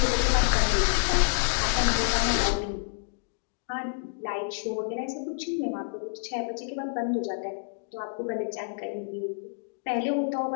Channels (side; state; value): right; silent; digital silence